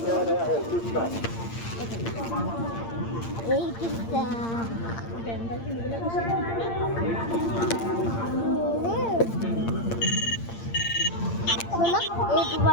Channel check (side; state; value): right; late; 8.7 ms